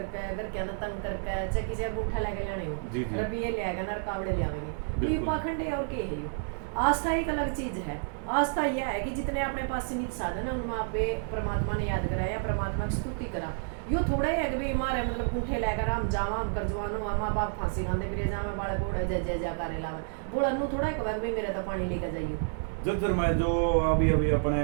घर क्या ना तंग करके चाहे किसी अंगूठा लेके लेने हो, रबिये ले आएगा ना कावड़े ले आवेंगे, तो ये पाखंड है और क्या है। ये आस्था एक अलग चीज है। आस्था यह है कि जितने अपने पास सीमित साधन है उनमें आप परमात्मा ने याद करा या परमात्मा की स्तुति करा। यो थोड़ा ही है कि भाई हमारे मतलब अंगूठे लेकर हम जावा, हम कर जवान हो, माँ बाप फांसी खाते फिर जावा बालक उड़ा जय जय जयकार लावा बोला नू थोड़ा है भाई मेरा तो पानी लेकर जाइए। जज्जर में जो अभी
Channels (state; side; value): silent; left; digital silence